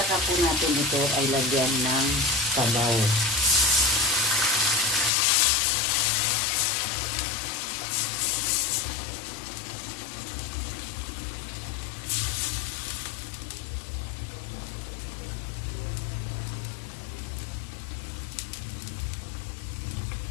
po natin ito ay lagyan ng sabaw.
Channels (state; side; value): drops out; right; at 5.1 s